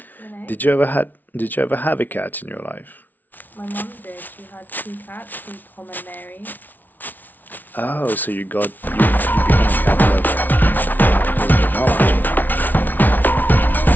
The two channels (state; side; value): late; right; 0.083 ms